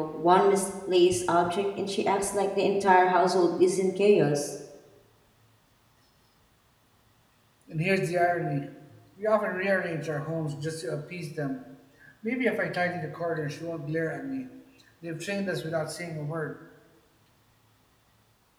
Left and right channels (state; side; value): identical; both; correlation 1.00